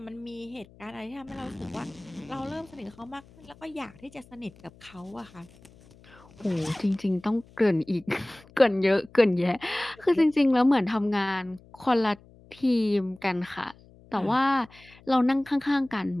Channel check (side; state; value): left; noise; hum, 25 dB below the sound